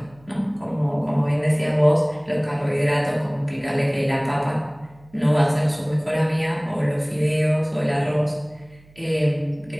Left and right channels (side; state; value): right; noise; hum, 27 dB below the sound